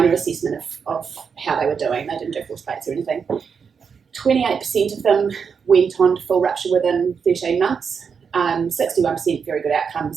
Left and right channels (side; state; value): left; quieter; 6.2 dB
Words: assessment of how they were doing. They didn't do force plates or anything. 28% of them went on to full rupture within 13 months. 61% very good